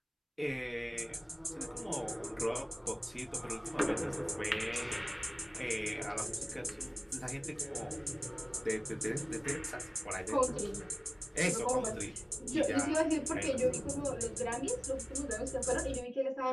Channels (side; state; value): both; identical; correlation 1.00